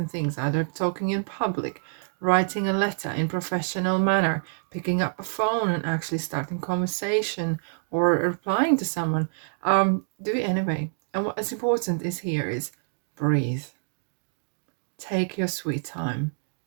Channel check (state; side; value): silent; left; digital silence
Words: things, either talking in public, writing a letter in professional manner, picking up a phone and actually starting conversation, or replying to someone, do it anyway. And what is important is here is breathe. Take your sweet time.